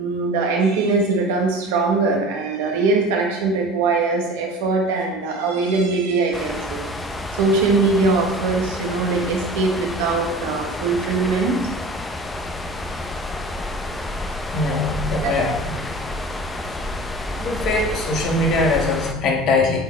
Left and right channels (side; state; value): both; normal; correlation 0.39